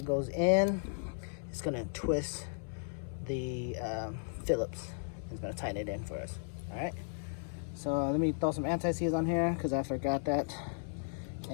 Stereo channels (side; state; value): right; silent; 54 dB below the other